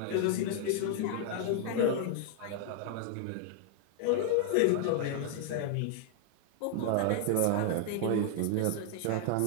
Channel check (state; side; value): different; both; correlation 0.00